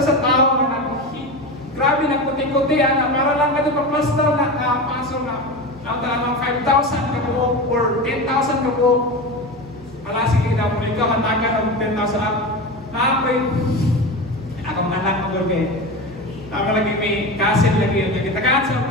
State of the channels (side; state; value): both; normal; correlation 0.24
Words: sa tao nga grabe nagputi-puti na para lang ka ito pa-plaster na pasol na ang talagang 5,000 ka buo or 10,000 ka buo. Wala sige na mo ikaw matagan ng 10,000 up. Naapoy akong anak mo doon kayo. Tama lagi may kasil lagi yun. Nagitagaan sa